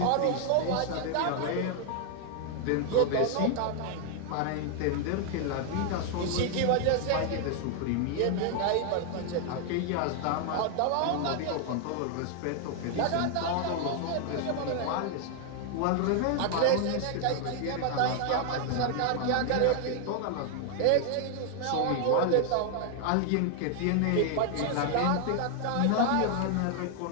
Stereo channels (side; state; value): both; different; correlation 0.00